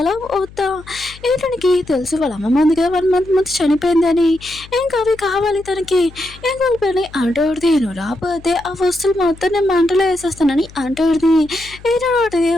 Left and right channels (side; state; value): left; noise; hum, 20 dB below the sound